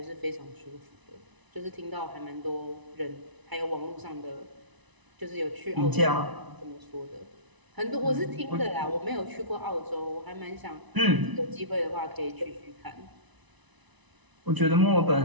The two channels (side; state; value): left; late; 1.0 ms